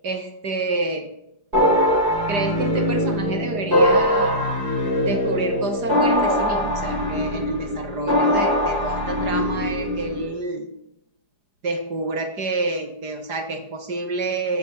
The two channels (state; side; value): late; left; 4.9 ms